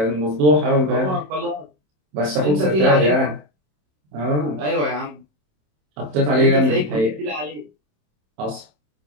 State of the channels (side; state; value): left; late; 27 ms